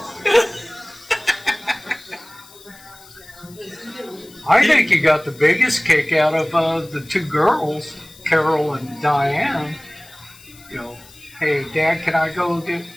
I think he got the biggest kick out of the two girls, Carol and Diane. You know, hey, Dad, can I go get?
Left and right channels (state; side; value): noise; left; hiss, 22 dB below the sound